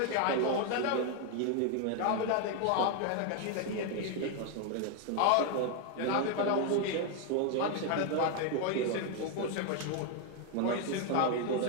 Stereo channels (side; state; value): both; different; correlation 0.01